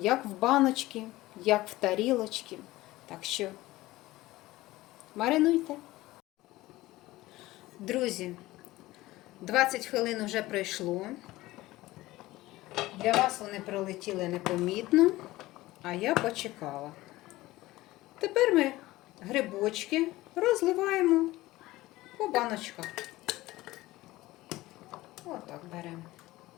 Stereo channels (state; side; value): quieter; right; 18.0 dB